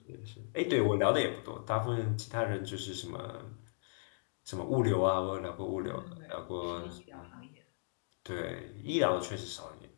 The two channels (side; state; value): right; silent; digital silence